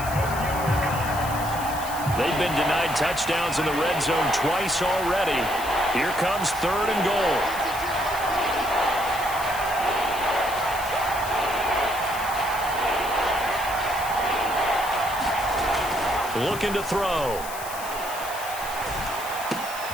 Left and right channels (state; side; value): noise; left; hiss, 11 dB below the sound